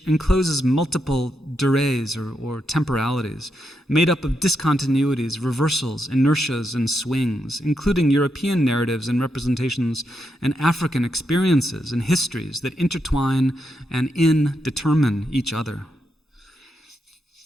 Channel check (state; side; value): normal; both; correlation 0.83